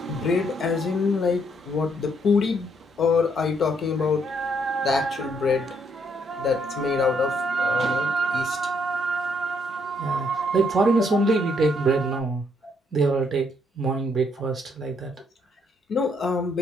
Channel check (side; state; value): both; normal; correlation 0.71